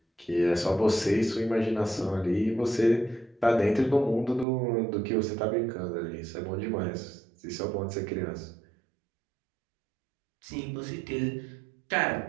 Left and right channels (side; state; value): left; drops out; at 4.5 s